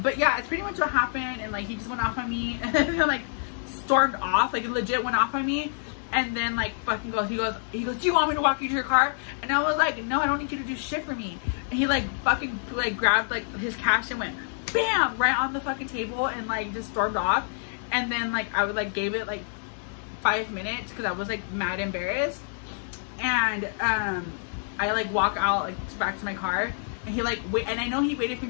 But yeah, it's pretty much what happened. And like, he just went off on me and then like stormed off, like legit went off on me. And then like fucking he goes, do you want me to walk you to your car? And I was like, no, I don't need you to do shit for me. And he like fucking like grabbed like his cash and went bam right on the fucking table and like just stormed off. And then like I would like gave it like 5 minutes because I was like mad embarrassed. And I like walk out like back to my car. And he like wait, and I know he waited for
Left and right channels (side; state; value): right; silent; digital silence